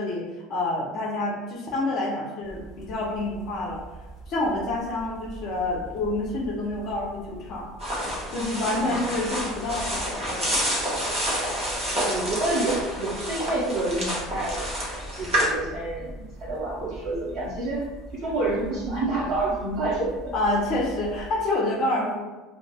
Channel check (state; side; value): normal; both; correlation 0.38